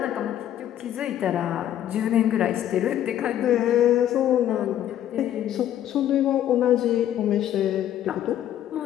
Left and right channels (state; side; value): quieter; right; 11.4 dB